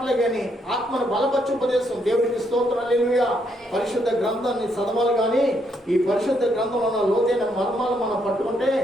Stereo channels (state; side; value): normal; both; correlation 0.75